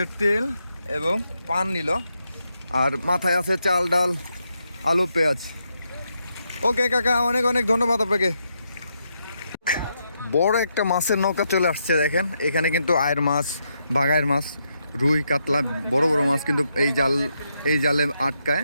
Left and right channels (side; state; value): both; inverted; correlation -0.81